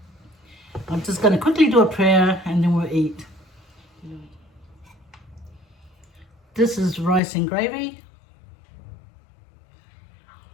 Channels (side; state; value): right; drops out; at 7.2 s